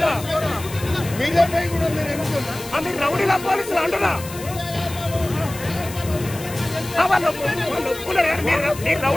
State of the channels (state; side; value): noise; left; hiss, 14 dB below the sound